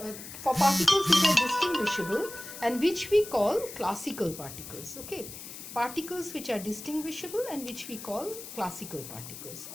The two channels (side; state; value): left; noise; hiss, 12 dB below the sound